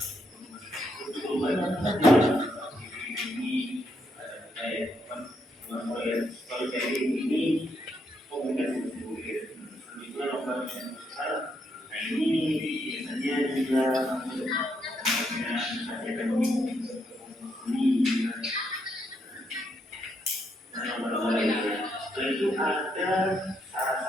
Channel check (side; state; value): both; normal; correlation 0.77